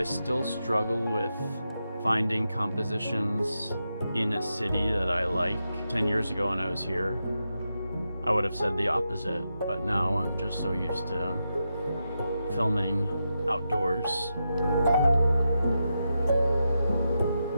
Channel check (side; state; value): both; inverted; correlation -0.87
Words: still struggle with finding compositions in a city that I like. 10 years ago when I was here, I would have said the opposite, but now I'm just so used to filming outdoors.